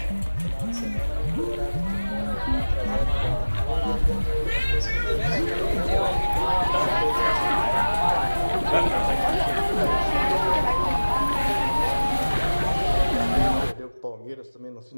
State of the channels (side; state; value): both; inverted; correlation -1.00